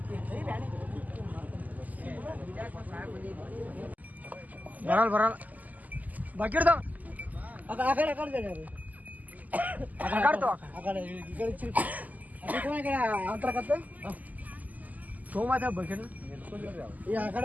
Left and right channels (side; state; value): left; late; 0.080 ms